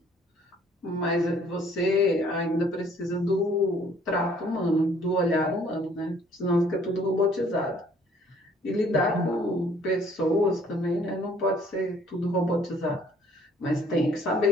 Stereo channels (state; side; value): normal; both; correlation 0.59